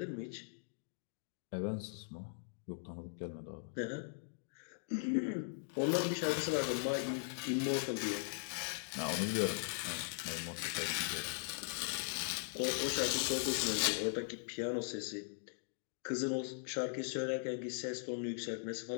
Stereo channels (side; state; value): right; silent; digital silence